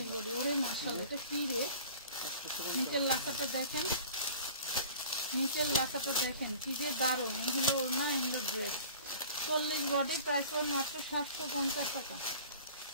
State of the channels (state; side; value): inverted; both; correlation -0.45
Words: বডি, ওরে মাশাআল্লাহ এটা কি রে, নিচের লাকাটা দেখেন, নিচের লাকাটা দেখেন কি যে দারুণ। এই হলো ওড়না, এই হলো ড্রেস। 40 বডি, প্রাইস পড়বে মাত্র 750 টাকা,